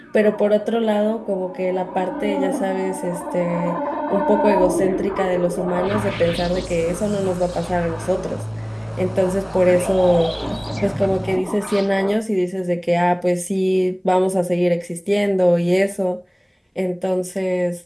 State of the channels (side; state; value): both; identical; correlation 1.00